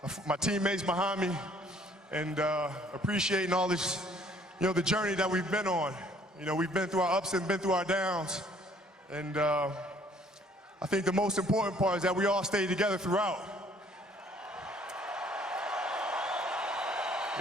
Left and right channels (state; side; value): normal; both; correlation 0.59